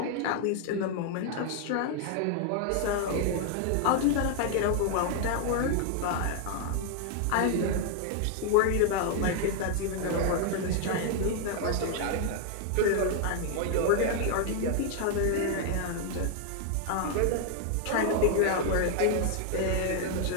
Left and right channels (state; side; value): different; both; correlation 0.00